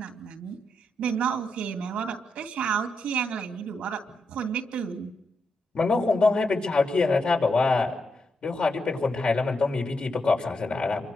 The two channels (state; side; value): normal; both; correlation 0.83